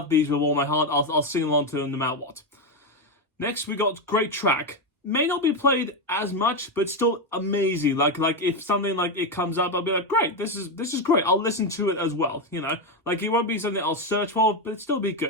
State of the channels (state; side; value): normal; both; correlation 0.09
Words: these with all my heart. I'll sing along to them no matter what. Next we got great track. May not be played as much, but still amazing. If something like it comes up, I'll be like, great, this is great. I'll listen to it as well. It won't be something I'll search for, but it'll still be